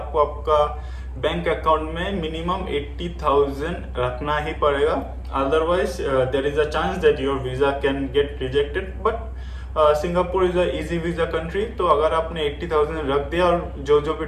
आपका बैंक अकाउंट में मिनिमम 80,000 रखना ही पड़ेगा, otherwise there is a chance that your visa can get rejected. But Singapore is a easy visa country, तो अगर आपने 80,000 रख दिया और जो भी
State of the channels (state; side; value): identical; both; correlation 1.00